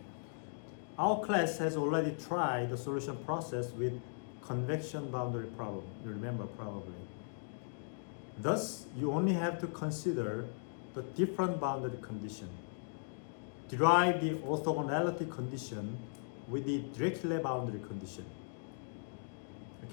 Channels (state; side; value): silent; right; digital silence